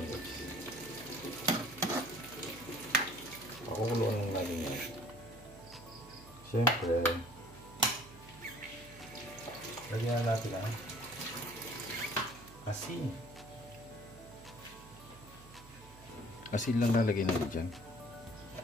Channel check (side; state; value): right; noise; hum, 20 dB below the sound